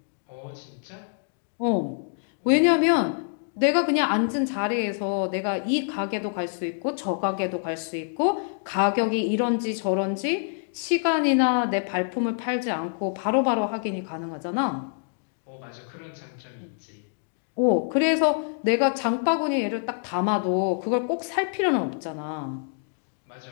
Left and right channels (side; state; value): right; silent; digital silence